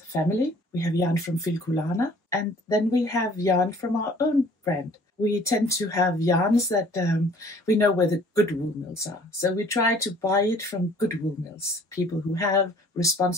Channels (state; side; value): normal; both; correlation 0.54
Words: family. We have yarn from Filkulana, and then we have yarn from our own brand. We tend to have yarns that we know where the good wool mills are. So we try to buy it from good wool mills, people who have